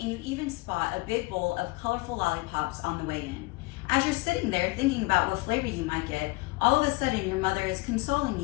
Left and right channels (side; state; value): right; quieter; 24.2 dB